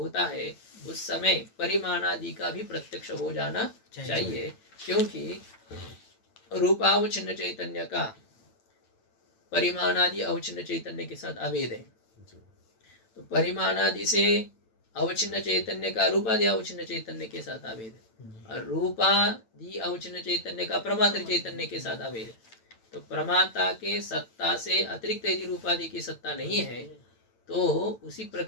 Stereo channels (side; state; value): right; late; 9.0 ms